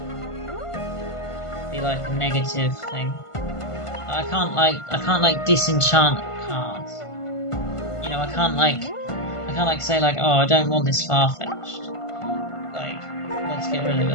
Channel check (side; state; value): right; late; 1.5 ms